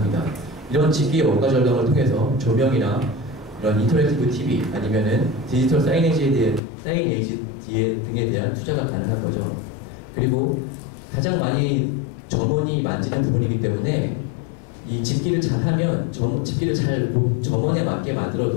이런 집기의 원가 절감을 통해서 조명이나 이런 인터랙티브 TV 아니면은 디지털 사이네지 등에 대한 투자가 가능한 거죠. 그리고 가장 많이 점원이 만지는 부분이기 때문에 이 집기를 잘하면 집기를 잘 점원에 맞게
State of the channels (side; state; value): right; drops out; at 6.6 s